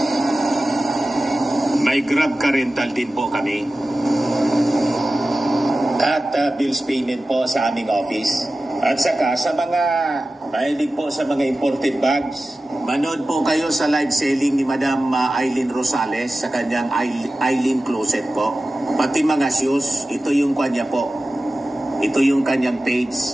May Grab car rental din po kami. At bills payment po sa aming office. At saka sa mga Mahilig po sa mga imported bags. Manood po kayo sa live selling ni Madam Aileen Rosales sa kanyang Aileen Closet po. Pati mga shoes, ito yung kanya po. Ito yung kanyang page.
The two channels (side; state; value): both; normal; correlation 0.95